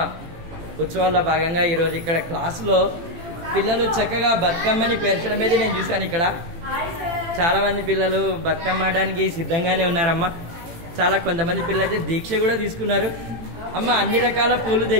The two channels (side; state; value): left; late; 18 ms